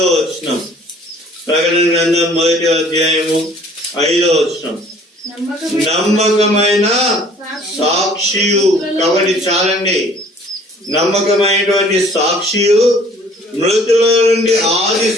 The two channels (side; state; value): both; normal; correlation 0.54